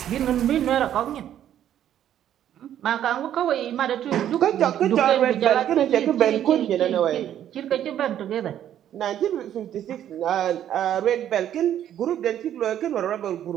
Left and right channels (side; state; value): left; quieter; 10.8 dB